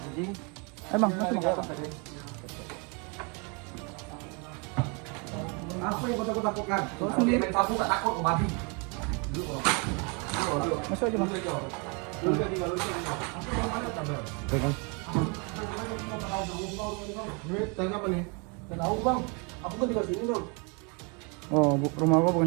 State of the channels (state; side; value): quieter; left; 33.3 dB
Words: Emang Lari ke atas tadi. Apa yang kau takutkan? Kau sendiri. Main sapu tak takut kau babi. Masuk aja bang. Pegang. Ini tanya apa nih? Tak tahu bang. Aku kan tinggal sini dong. Oh, rumah gua